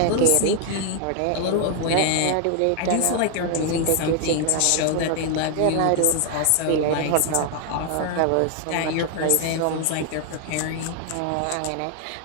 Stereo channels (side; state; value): both; different; correlation 0.00